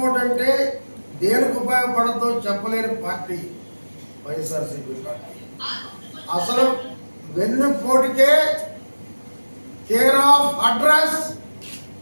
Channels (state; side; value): inverted; both; correlation -1.00